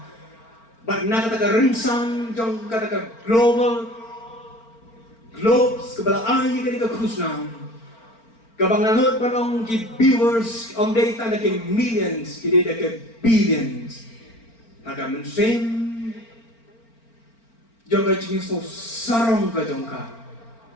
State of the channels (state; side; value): late; right; 4.4 ms